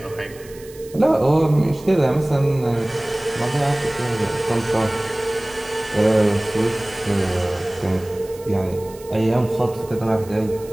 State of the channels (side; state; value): right; noise; hiss, 22 dB below the sound